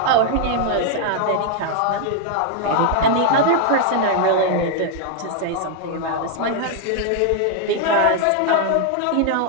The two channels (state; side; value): different; both; correlation 0.00